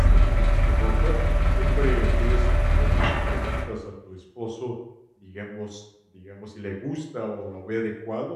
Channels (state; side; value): identical; both; correlation 1.00